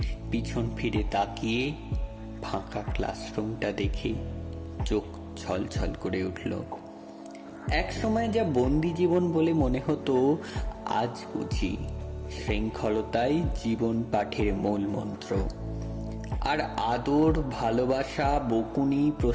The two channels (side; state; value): both; identical; correlation 1.00